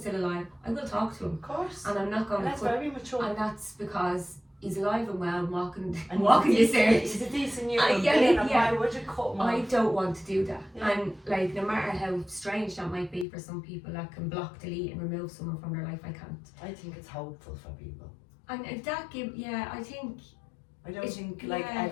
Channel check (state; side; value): drops out; right; at 13.2 s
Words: still alive. I will talk to him. Of course. And I'm not going to that's very mature. And that's because he's alive and well, walking this earth. He's a decent human yeah, being, yeah. Why would you cut him I off? don't want to do that. Yeah. And, like, no matter how strange that might be for some people that can block, delete and remove someone from their life, I can't. I think it's hopeful for people. And if that I think... I don't think like